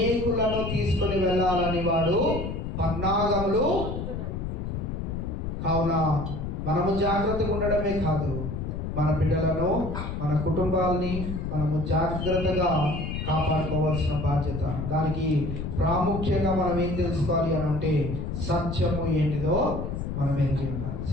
తీసుకొని వెళ్ళాలని వాడు పన్నాగములు. కావున మనము జాగ్రత్తగా ఉండడమే కాదు, మన బిడ్డలను, మన కుటుంబాలని మనము జాగ్రత్తగా కాపాడుకోవాల్సిన బాధ్యత. దానికి ప్రాముఖ్యంగా మనం ఏం తెలుసుకోవాలి అని అంటే సత్యము ఏంటిదో మనం ఎరిగి ఉండాలి.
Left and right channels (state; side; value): noise; left; rumble, 4 dB below the sound